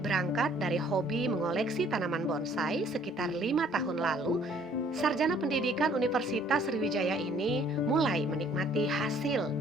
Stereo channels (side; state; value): both; normal; correlation 0.59